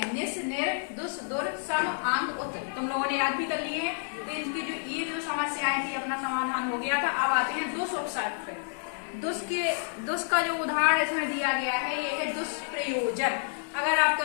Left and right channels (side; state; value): right; silent; digital silence